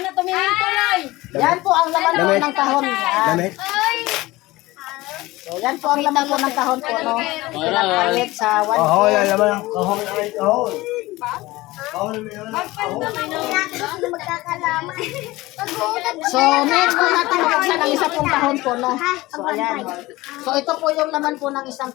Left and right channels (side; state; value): right; quieter; 19.5 dB